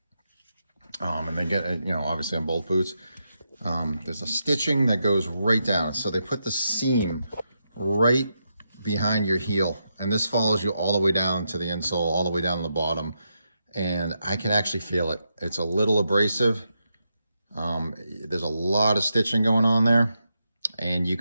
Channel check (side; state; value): both; inverted; correlation -0.84